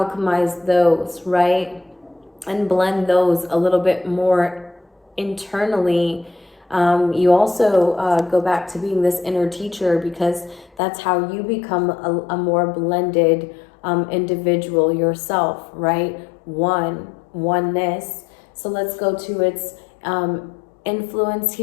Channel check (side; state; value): right; drops out; at 10.8 s